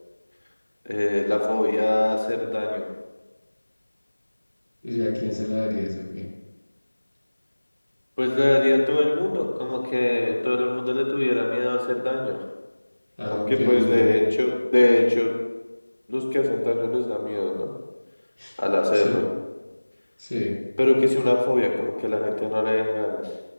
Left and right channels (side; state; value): both; inverted; correlation -1.00